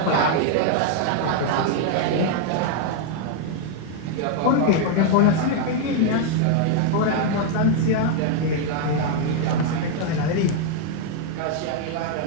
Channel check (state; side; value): different; both; correlation 0.00